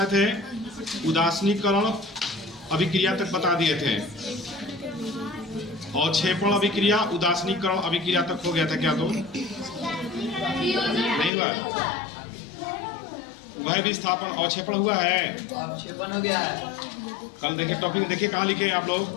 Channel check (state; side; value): drops out; right; at 11.3 s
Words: थे? उदासीनीकरण अभिक्रिया तक बता दिए थे, और क्षेपण अभिक्रिया उदासीनीकरण अभिक्रिया तक हो गया था। क्या तो नहीं हुआ? वह विस्थापन और क्षेपण हुआ है, क्षेपण हो गया है। कल देखिए टॉपिक, देखिए कहाँ लिखे हैं आप लोग?